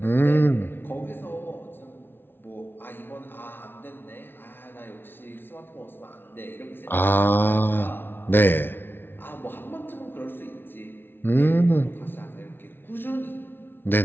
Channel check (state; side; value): late; right; 0.10 ms